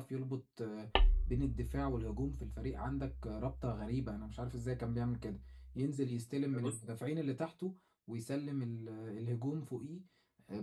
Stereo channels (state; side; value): identical; both; correlation 1.00